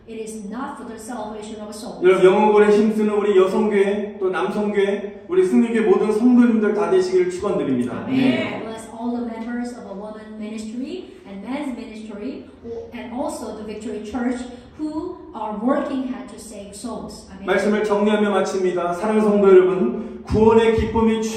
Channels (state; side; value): identical; both; correlation 1.00